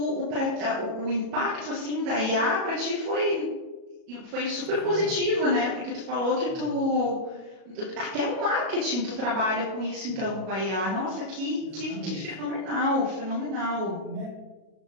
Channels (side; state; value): left; late; 37 ms